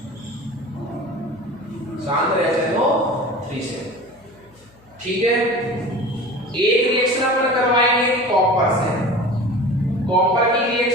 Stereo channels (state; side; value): noise; left; hum, 29 dB below the sound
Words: सांद्र HNO3 से। ठीक है, एक रिएक्शन अपन करवाएंगे कॉपर से, कॉपर की